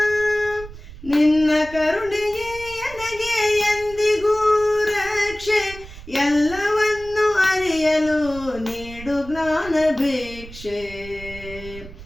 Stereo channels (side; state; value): right; noise; rumble, 16 dB below the sound